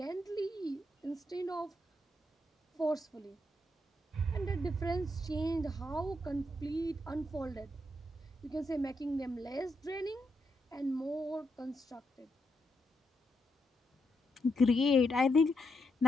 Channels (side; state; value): both; normal; correlation 0.81